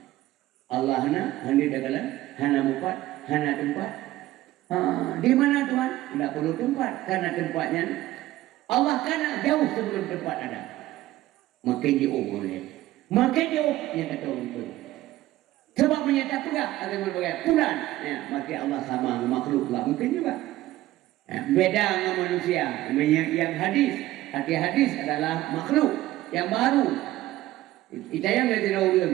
Allah hanya kata hanya mupat, hanya tempat. Di mana Tuhan? Tidak perlu tempat karena tempatnya Allah kan jauh sebelum tempat ada. Makin jauh boleh. Makin jauh yang kata orang itu. Sebab menyata pula ada yang berbagai bulan. Ya, makin Allah sama makhluk lah mungkin juga. Ya, beda dengan manusia. Yang hadis, arti hadis adalah makhluk yang baru. Kita yang tidak ulun.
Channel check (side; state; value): left; quieter; 15.8 dB